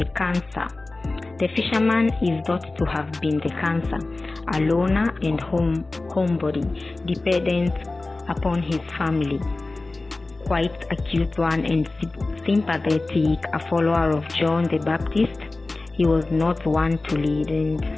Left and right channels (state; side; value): quieter; right; 3.2 dB